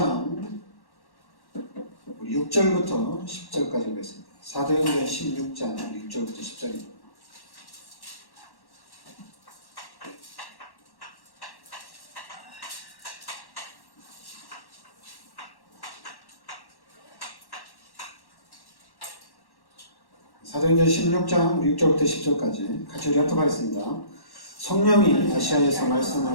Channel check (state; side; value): late; right; 1.1 ms